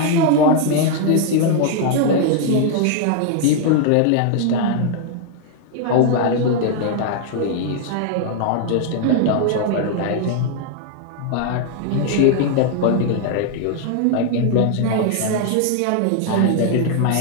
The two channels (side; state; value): both; different; correlation 0.00